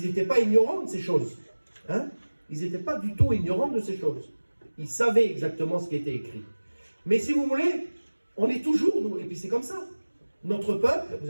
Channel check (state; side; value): inverted; both; correlation -1.00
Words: n'étaient pas ignorants de ces choses. Hein? Ils n'étaient pas du tout ignorants de ces choses. Ils savaient exactement ce qui était écrit. Mais si vous voulez, on est toujours, nous, et puis c'est comme ça. Notre peuple, vous